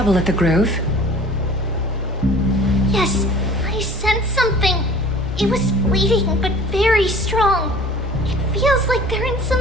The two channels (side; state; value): both; normal; correlation 0.46